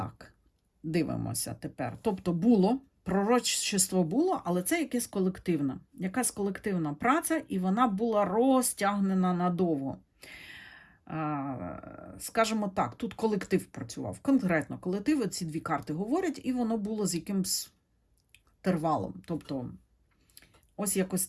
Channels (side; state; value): both; identical; correlation 1.00